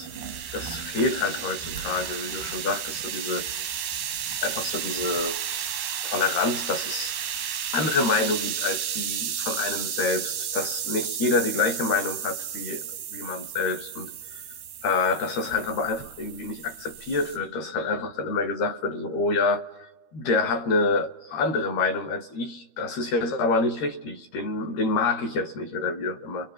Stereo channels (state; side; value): late; right; 13 ms